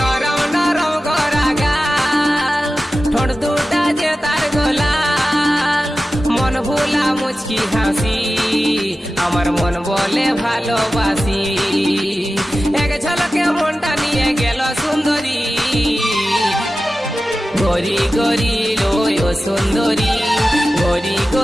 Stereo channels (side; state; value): both; normal; correlation 0.94